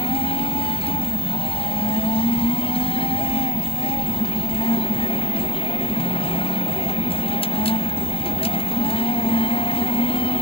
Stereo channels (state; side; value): late; right; 0.27 ms